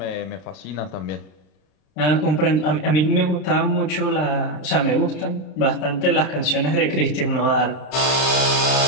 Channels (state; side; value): late; right; 32 ms